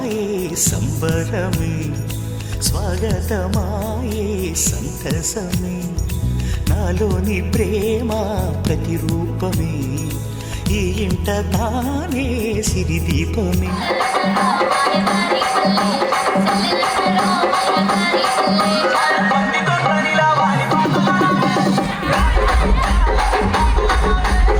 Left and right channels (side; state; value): both; identical; correlation 1.00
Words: సంబరమే స్వాగతమాయే సంతసమే నాలోని ప్రేమ ప్రతిరూపమే ఈ ఇంట తానే సిరిదీపమే